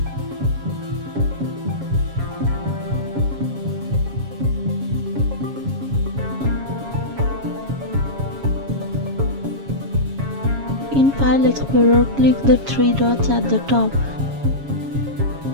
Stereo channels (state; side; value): late; left; 7.3 ms